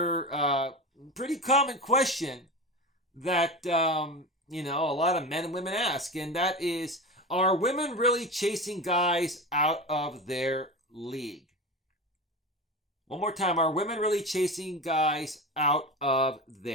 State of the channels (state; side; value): normal; both; correlation 0.25